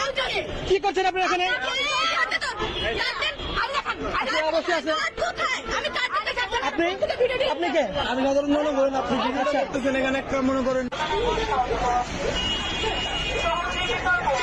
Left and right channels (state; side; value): identical; both; correlation 1.00